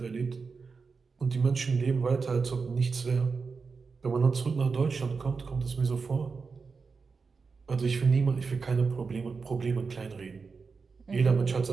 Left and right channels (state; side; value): quieter; left; 4.9 dB